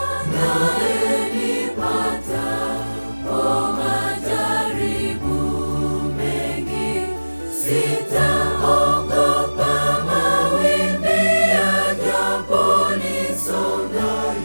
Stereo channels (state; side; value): inverted; both; correlation -1.00